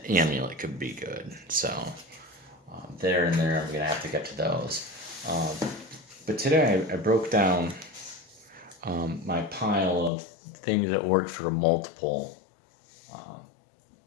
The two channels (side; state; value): right; drops out; at 10.1 s